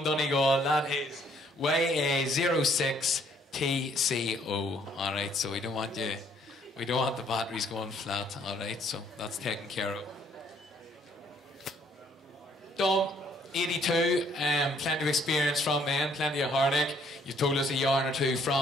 Donegal, that is YA06TCO. Alright, so we don't want the batteries going flat. Alright, so that's taken care of. Dom, 82, plenty of experience from then, plenty of heartache. You've told us a yarn or 2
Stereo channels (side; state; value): both; normal; correlation 0.64